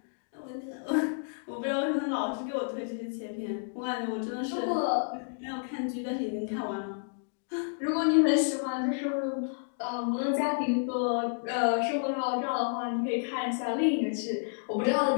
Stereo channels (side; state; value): right; silent; digital silence